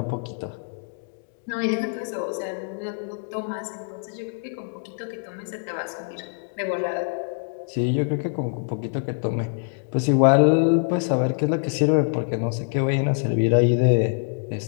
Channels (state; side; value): silent; right; digital silence